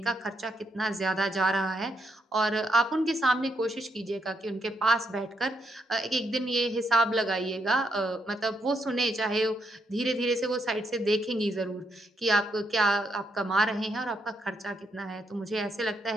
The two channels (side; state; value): both; normal; correlation 0.77